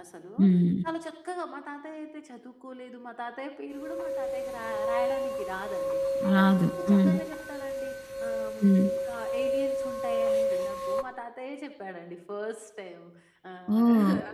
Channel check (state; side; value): identical; both; correlation 1.00